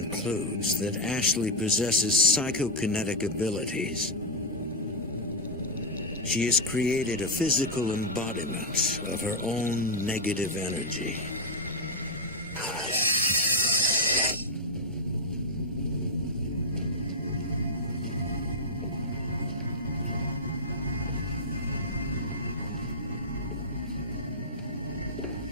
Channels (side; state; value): both; normal; correlation -0.01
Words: that Ashley possesses psychokinetic abilities. She has created a physical embodiment of her own negative energy.